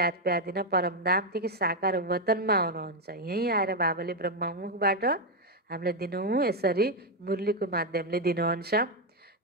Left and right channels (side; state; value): both; normal; correlation 0.03